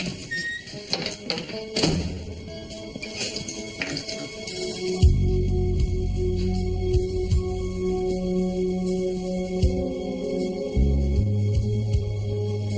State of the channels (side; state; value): both; identical; correlation 1.00